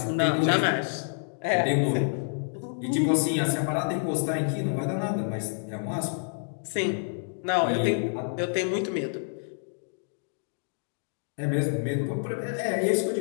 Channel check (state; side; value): silent; right; digital silence